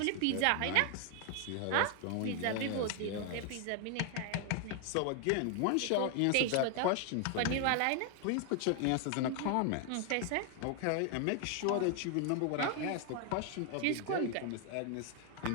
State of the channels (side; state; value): both; different; correlation 0.00